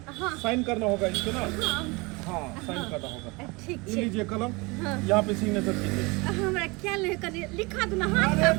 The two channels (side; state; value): left; quieter; 26.0 dB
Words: हाँ। साइन करना होगा इसको ना। हाँ हाँ, साइन करना होगा। ठीक ये छै। लीजिए कलम, हाँ। यहाँ पे सिग्नेचर कीजिए। हमरा क्या ले कनी लिखा दो ना, हाथ अरे का